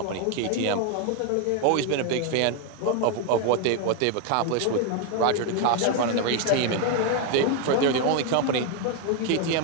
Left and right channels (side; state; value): both; different; correlation 0.01